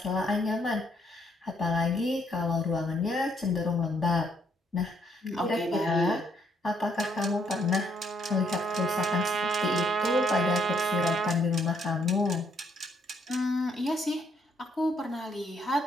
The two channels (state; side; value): normal; both; correlation 0.70